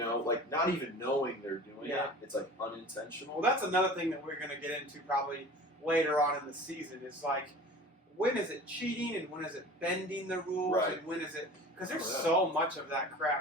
like not even knowing they're doing Yeah. it. It's like unintentional. Well, that's another thing that we're going to get into probably later on in the season is like, when is it cheating and when is it bending the rules Right. and when is it... Because there's Oh, yeah. so much of that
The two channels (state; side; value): normal; both; correlation 0.40